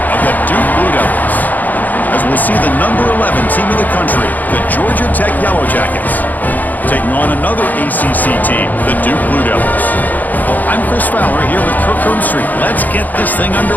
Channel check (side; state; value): right; late; 0.083 ms